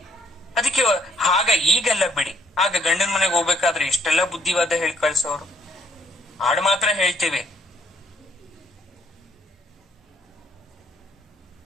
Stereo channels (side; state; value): both; normal; correlation 0.68